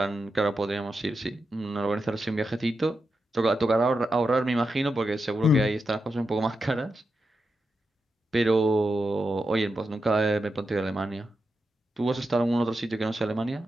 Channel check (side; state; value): both; normal; correlation 0.88